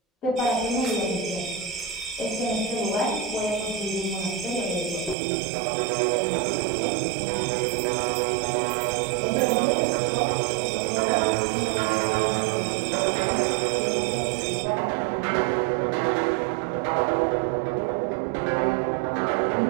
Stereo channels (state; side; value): drops out; left; at 5.2 s